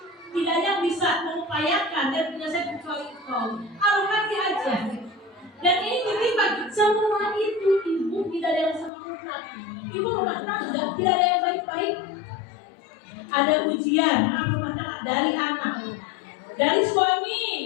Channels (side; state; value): right; drops out; at 8.9 s